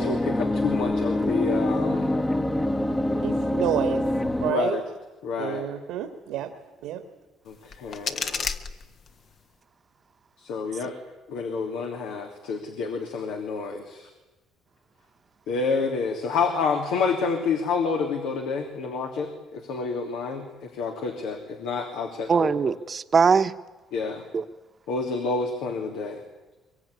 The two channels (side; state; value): both; normal; correlation 0.68